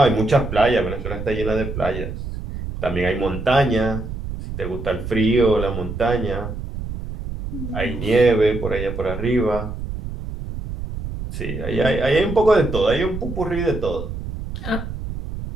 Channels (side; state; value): right; noise; rumble, 7 dB below the sound